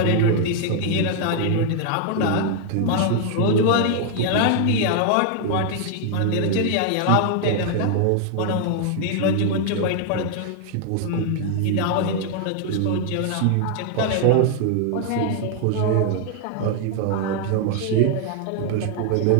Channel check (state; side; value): different; both; correlation 0.00